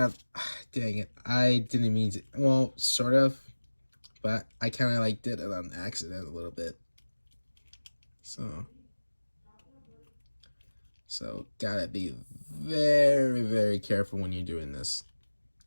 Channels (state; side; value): inverted; both; correlation -1.00